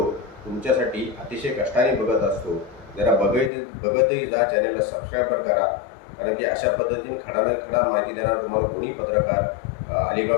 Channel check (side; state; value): right; drops out; at 3.5 s